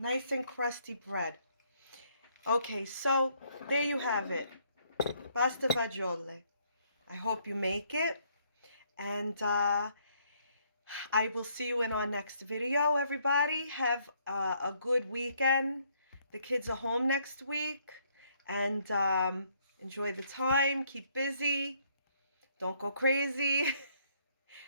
and crusty bread. Okay, so there you have it. Pasta fagiole. I hope you make it. And I will see you in our next video, everybody. Have a good weekend. The kids are home next week. And enjoy the time. Keep busy. Don't go crazy.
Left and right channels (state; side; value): inverted; both; correlation -0.68